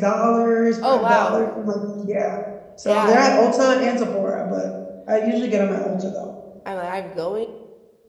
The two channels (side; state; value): both; identical; correlation 1.00